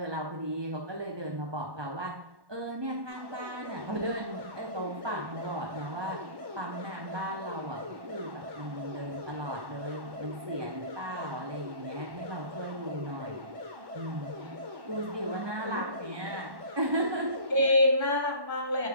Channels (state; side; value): late; left; 1.1 ms